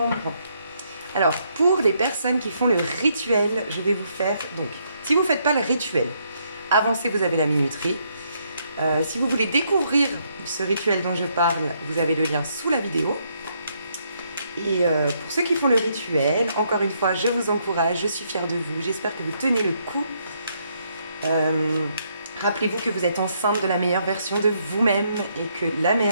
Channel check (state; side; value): inverted; both; correlation -0.74